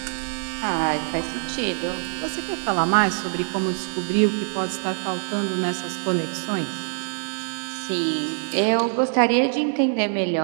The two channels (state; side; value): silent; left; 62 dB below the other